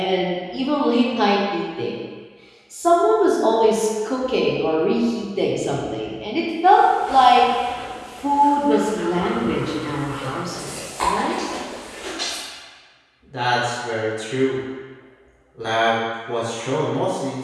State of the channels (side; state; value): both; identical; correlation 1.00